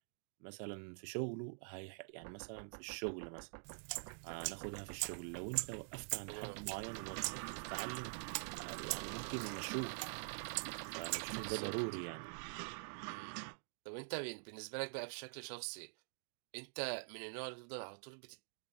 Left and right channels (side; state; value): left; silent; digital silence